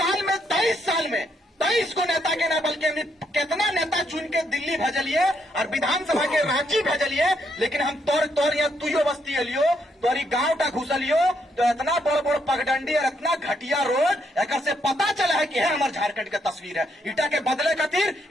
में 23 साल में 23 को नेता के ना बल्कि हमने कितना नेता चुन के दिल्ली भेजलिए और विधानसभा के रांची भेजलिए, लेकिन हम तोर यहाँ तुयो बस्ती लियो, तोरी गांव टा घुसलियो, तो इतना बड़ बड़ पगडंडी और इतना घटिया रोड एक से पता चला है कि है हमारे झारखंड का तस्वीर है। इटा के बदले खातिर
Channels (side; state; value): both; normal; correlation 0.75